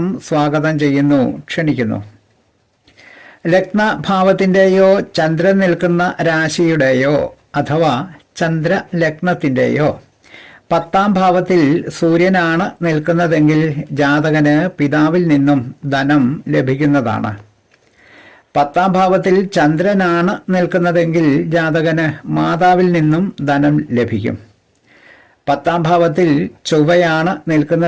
സ്വാഗതം ചെയ്യുന്നു, ക്ഷണിക്കുന്നു. ലഗ്നഭാവത്തിൻ്റെയോ ചന്ദ്രൻ നിൽക്കുന്ന രാശിയുടെയോ അഥവാ ചന്ദ്രലഗ്നത്തിൻ്റെയോ 10ാം ഭാവത്തിൽ സൂര്യനാണ് നിൽക്കുന്നതെങ്കിൽ ജാതകന് പിതാവിൽ നിന്നും ധനം ലഭിക്കുന്നതാണ്. 10ാം ഭാവത്തിൽ ചന്ദ്രനാണ് നിൽക്കുന്നതെങ്കിൽ ജാതകന് മാതാവിൽ നിന്നും ധനം ലഭിക്കും. 10ാം ഭാവത്തിൽ ചൊവ്വയാണ്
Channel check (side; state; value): both; identical; correlation 1.00